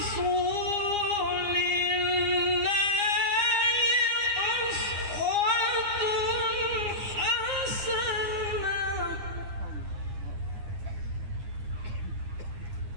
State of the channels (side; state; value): left; late; 9.8 ms